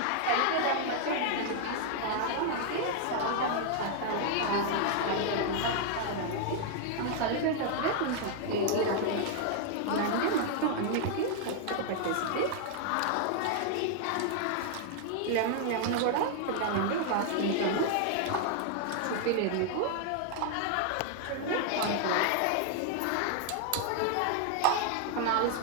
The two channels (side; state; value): both; different; correlation 0.00